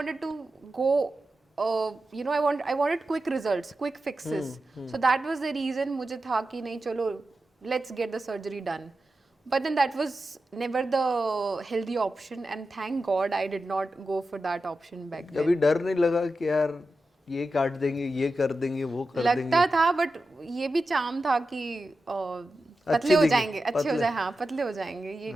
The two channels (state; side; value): normal; both; correlation 0.91